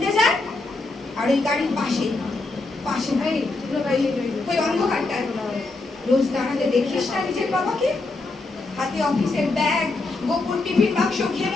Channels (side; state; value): right; quieter; 3.3 dB